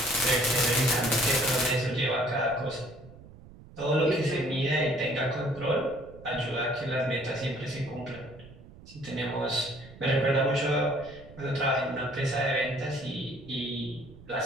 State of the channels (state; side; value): noise; right; rumble, 20 dB below the sound